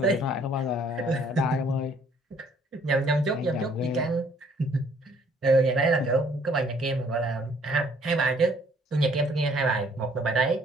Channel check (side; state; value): both; normal; correlation 0.62